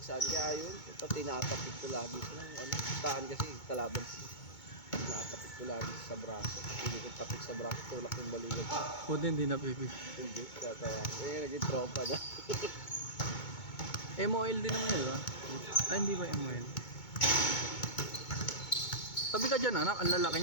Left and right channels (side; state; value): right; late; 2.2 ms